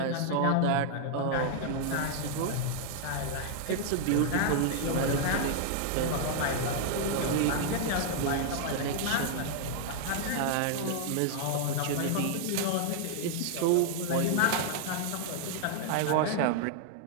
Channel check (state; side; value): different; both; correlation -0.01